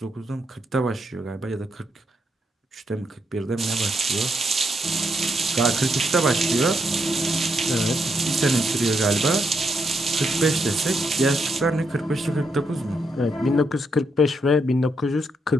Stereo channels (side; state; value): both; normal; correlation 0.79